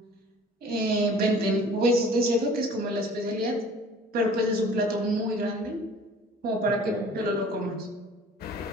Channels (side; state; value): both; normal; correlation 0.48